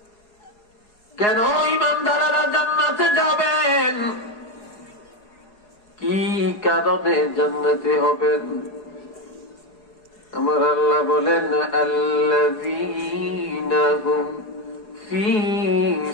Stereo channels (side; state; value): right; late; 4.8 ms